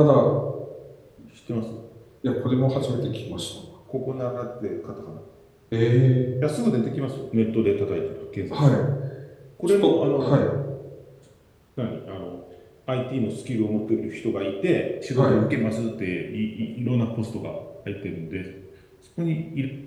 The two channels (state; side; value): identical; both; correlation 1.00